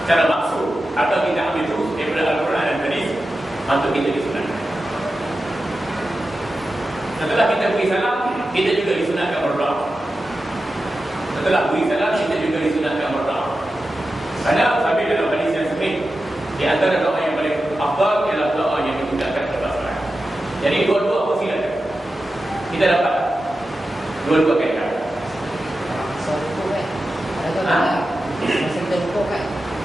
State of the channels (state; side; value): normal; both; correlation 0.92